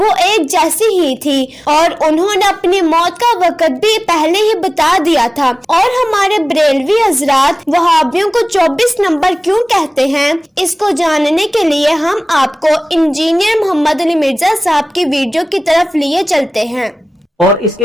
एक जैसी ही थी, और उन्होंने अपनी मौत का वक्त भी पहले ही बता दिया था। और हमारे बरेलवी हजरात वहाबियों को 24 नंबर क्यों कहते हैं, इसको जानने के लिए हम आपको इंजीनियर मोहम्मद अली मिर्जा साहब की वीडियो की तरफ लिए चलते हैं। और इसके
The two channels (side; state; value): both; normal; correlation 0.97